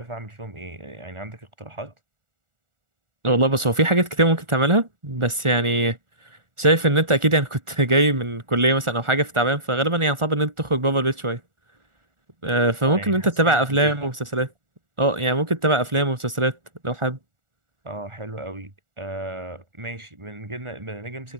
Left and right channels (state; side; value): late; left; 1.4 ms